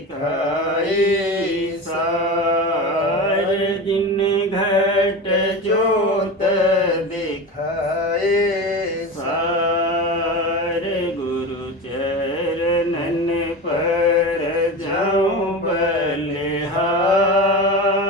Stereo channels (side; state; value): both; normal; correlation 0.26